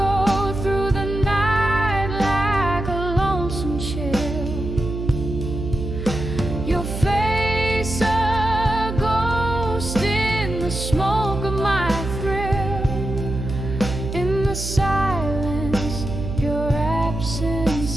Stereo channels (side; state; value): right; noise; hum, 5 dB below the sound